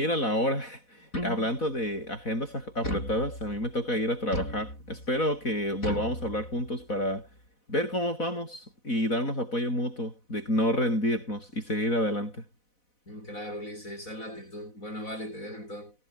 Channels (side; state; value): right; late; 4.1 ms